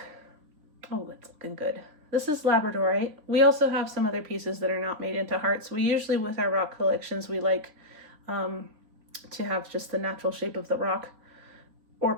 Oh, it's looking good. This is Labradorite. We also have some other pieces that are not made into hearts. We usually, with our rock collections, we like to have just the natural shape of the rock, or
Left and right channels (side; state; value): left; late; 3.6 ms